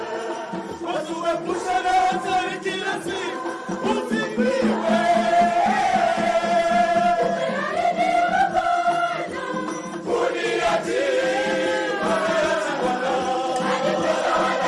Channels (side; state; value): both; identical; correlation 1.00